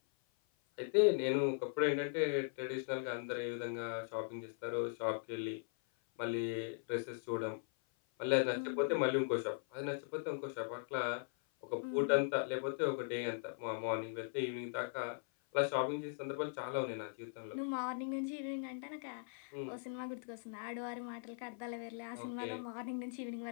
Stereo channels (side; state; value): right; silent; 51 dB below the other